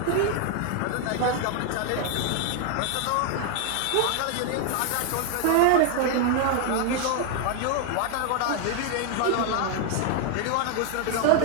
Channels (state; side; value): different; both; correlation 0.00